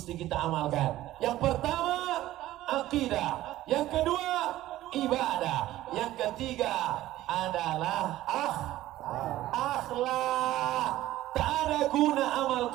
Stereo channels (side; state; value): left; quieter; 15.0 dB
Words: kita amalkan. Yang pertama, akidah. Yang kedua, ibadah. Yang ketiga adalah akhlak. Tak ada guna amal